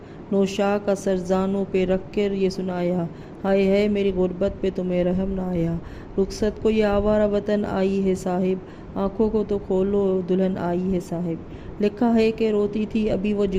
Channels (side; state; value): both; identical; correlation 1.00